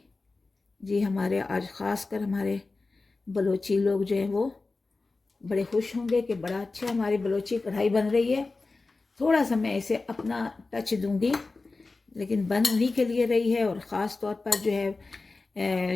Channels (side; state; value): right; quieter; 3.6 dB